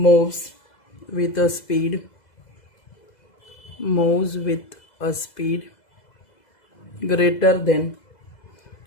with a speed greater than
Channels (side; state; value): right; late; 2.0 ms